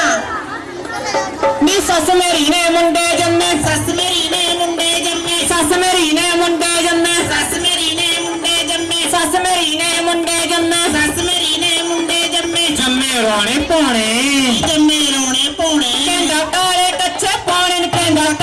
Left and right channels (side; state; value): both; identical; correlation 1.00